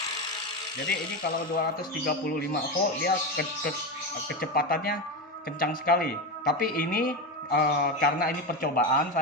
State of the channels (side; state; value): both; normal; correlation 0.17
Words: Jadi ini kalau 235 volt dia kecepatannya kencang sekali. Tapi ini karena ini percobaan,